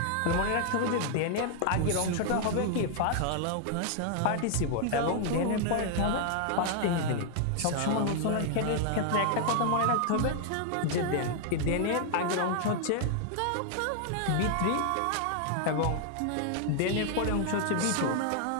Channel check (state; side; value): different; both; correlation 0.00